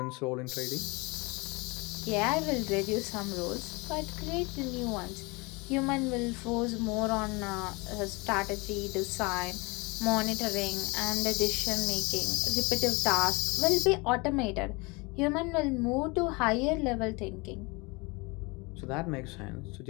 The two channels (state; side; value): quieter; right; 27.0 dB